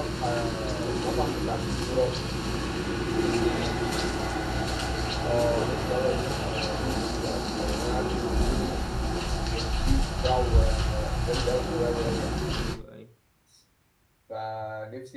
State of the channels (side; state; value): both; identical; correlation 1.00